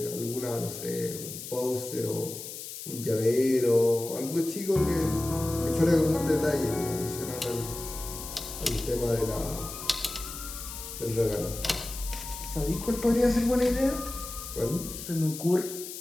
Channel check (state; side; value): noise; left; hiss, 10 dB below the sound